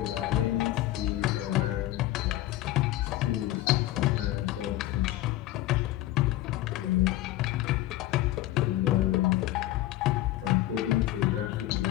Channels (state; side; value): quieter; right; 15.4 dB